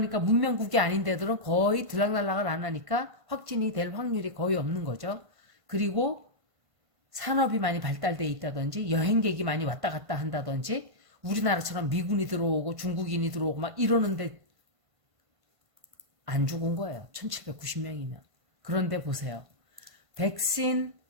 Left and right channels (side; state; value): left; late; 1.5 ms